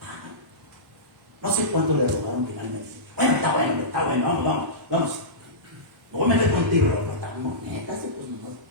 No sé cuánto le rogaron finalmente. Bueno, está bueno, vamos. No voy a meter contigo, pero estamos netas, pues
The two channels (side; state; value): both; normal; correlation -0.17